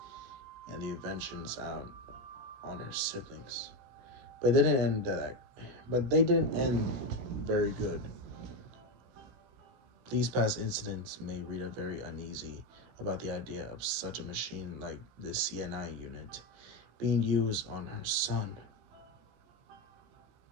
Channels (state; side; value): late; left; 16 ms